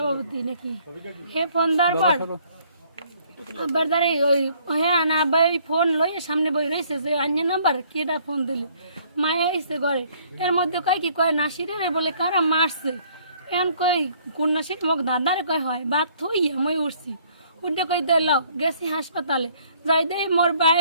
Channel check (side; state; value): both; inverted; correlation -0.61